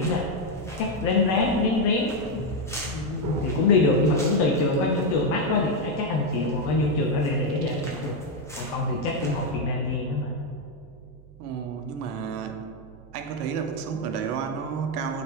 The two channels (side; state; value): right; noise; hum, 22 dB below the sound